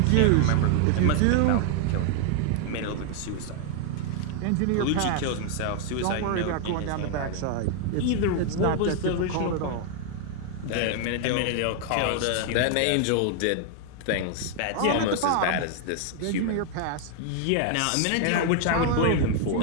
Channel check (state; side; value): different; both; correlation 0.00